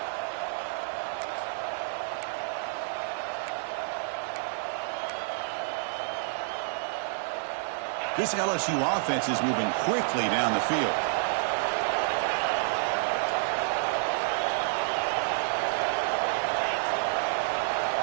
This LSU offense is moving quickly down the field.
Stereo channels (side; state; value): left; silent; digital silence